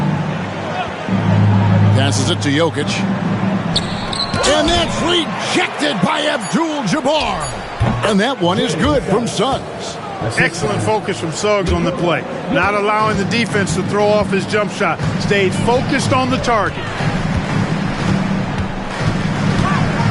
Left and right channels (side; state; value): both; identical; correlation 1.00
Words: Passes it to Jokic. And that's rejected by Abdul-Jabbar. And that one is good from Suggs. Excellent focus from Suggs on the play. Not allowing the defense to throw off his jump shot. Stayed focused on the target.